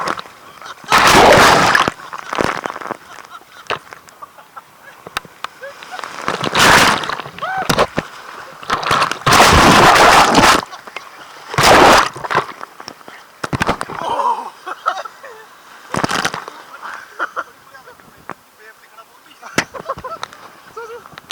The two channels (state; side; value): identical; both; correlation 1.00